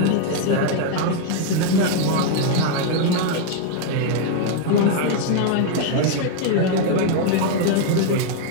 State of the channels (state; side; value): different; both; correlation 0.00